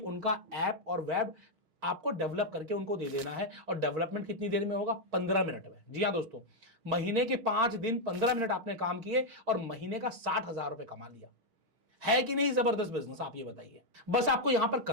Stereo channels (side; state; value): left; late; 6.4 ms